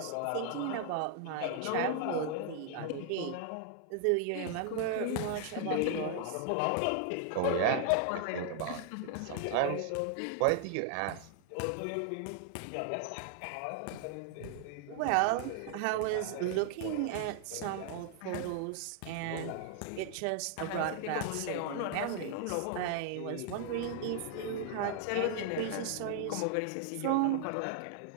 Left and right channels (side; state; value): both; different; correlation 0.00